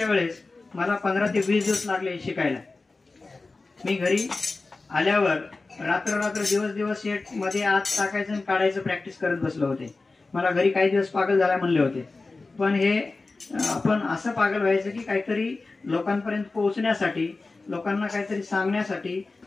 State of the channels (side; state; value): right; quieter; 3.6 dB